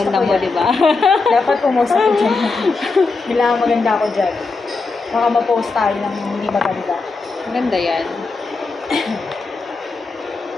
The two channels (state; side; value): quieter; right; 4.0 dB